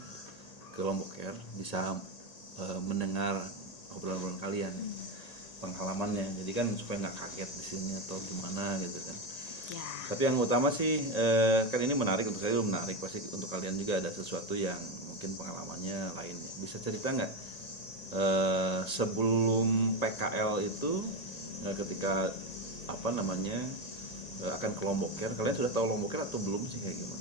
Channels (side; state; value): right; late; 1.9 ms